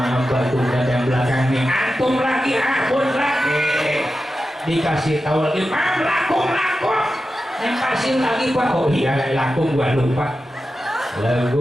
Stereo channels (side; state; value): both; normal; correlation 0.92